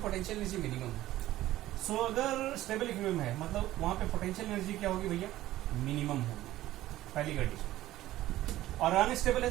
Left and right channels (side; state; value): left; quieter; 15.1 dB